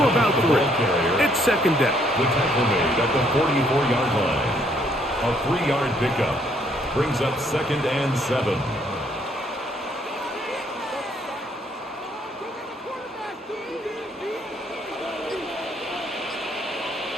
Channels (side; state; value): both; normal; correlation 0.67